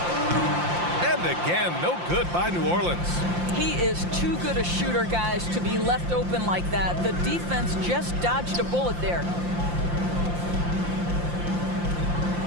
And again, no good by New Orleans. He is too good a shooter, guys, to be left open like that. The defense just dodged a bullet there.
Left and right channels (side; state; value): left; late; 5.7 ms